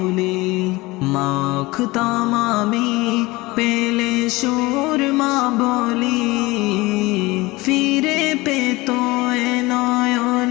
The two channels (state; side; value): quieter; right; 21.5 dB